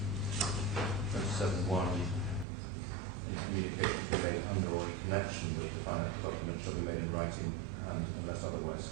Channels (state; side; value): drops out; left; at 2.5 s